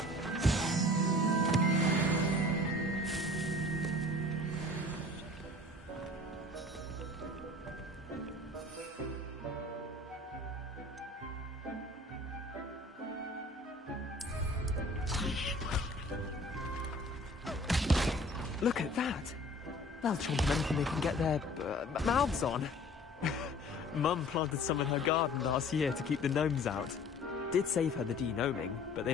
Look at that! They'll chomp on anything they can get their mouths on. Mum planted some in her garden last year to keep the gnomes out. Did save her the de-gnoming, but they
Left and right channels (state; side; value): normal; both; correlation 0.47